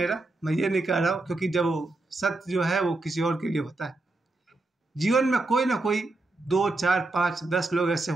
मैं ये नहीं कह रहा हूँ, क्योंकि जब वो सत्य जो है वो किसी और के लिए होता है। जीवन में कोई ना कोई 2, 4, 5, 10 लोग ऐसे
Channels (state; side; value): quieter; left; 3.0 dB